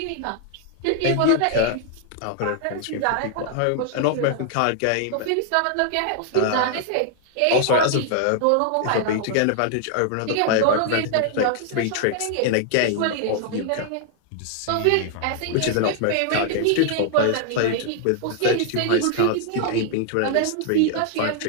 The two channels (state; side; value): different; both; correlation 0.00